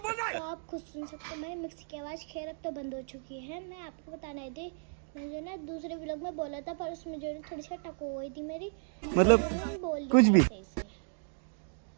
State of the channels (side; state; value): left; silent; digital silence